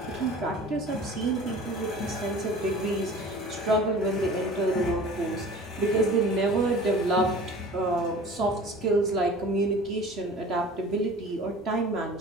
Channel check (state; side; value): normal; both; correlation 0.42